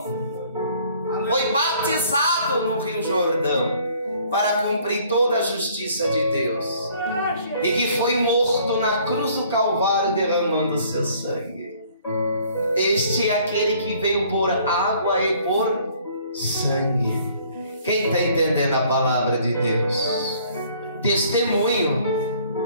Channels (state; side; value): inverted; both; correlation -0.58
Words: foi batizado no Rio Jordão para cumprir toda a justiça de Deus, e que foi morto na cruz do Calvário derramando o seu sangue. Este é aquele que veio por água e por sangue. Quem está entendendo a palavra de Deus? Testemunho.